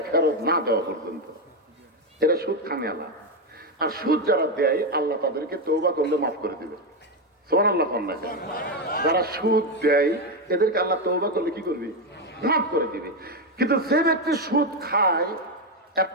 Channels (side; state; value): both; normal; correlation 0.08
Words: ফেরত না দেওয়া পর্যন্ত। এরা সুদ খানে আল্লাহ। আর সুদ যারা দেয়, আল্লাহ তাদেরকে তওবা করলে মাফ করে দিবে। সুবহানাল্লাহ। যারা সুদ দেয় এদেরকে আল্লাহ তওবা করলে কি করবে? মাফ করে দিবে। কিন্তু যে ব্যক্তি সুদ খায়